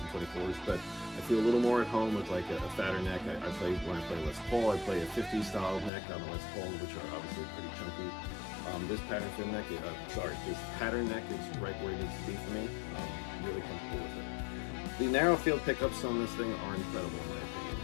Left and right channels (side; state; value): right; drops out; at 5.9 s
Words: 24s, but I feel a little more at home with like a fatter neck. When I play Les Paul, I play a 50 style neck on the Les Paul, which are obviously pretty chunky. This pattern thin neck, this pattern neck is right where it needs to be for me. I'm really comfortable with it. The narrow field pickups on this thing are incredible in my opinion.